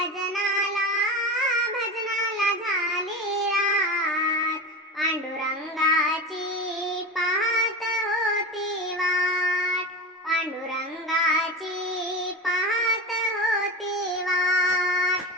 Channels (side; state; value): both; normal; correlation 0.25